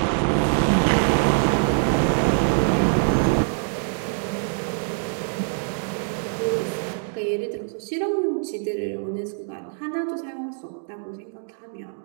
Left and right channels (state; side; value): silent; left; digital silence